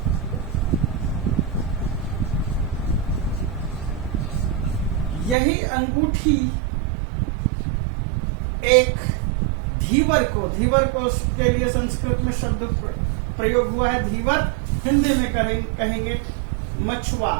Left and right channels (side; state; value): left; drops out; at 5.4 s